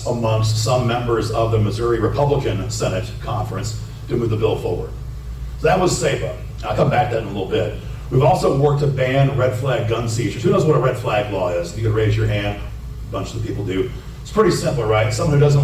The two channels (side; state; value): both; identical; correlation 1.00